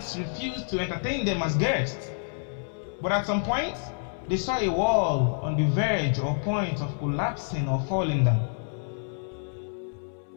refused to entertain them as guests. But at some point, they saw a wall on the verge or point of collapsing or falling down.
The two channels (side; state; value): right; silent; 59 dB below the other